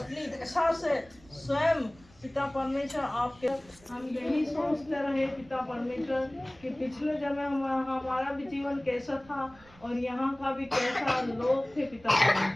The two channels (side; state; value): right; noise; rumble, 25 dB below the sound